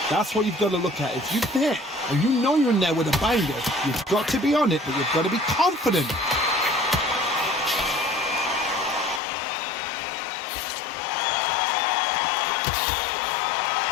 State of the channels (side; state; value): right; drops out; at 9.2 s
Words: That's what you've got to look at. If you're there and you know you're in there with a banger, you've got to be on it, but you've got to be confident.